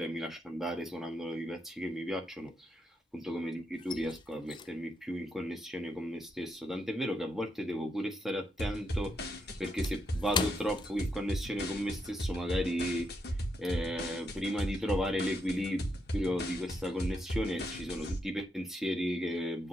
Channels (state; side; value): normal; both; correlation 0.80